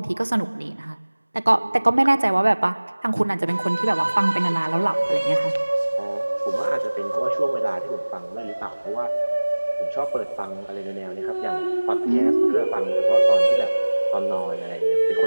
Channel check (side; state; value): both; inverted; correlation -1.00